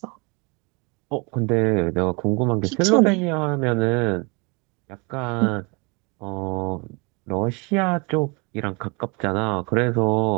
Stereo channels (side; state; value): left; quieter; 29.6 dB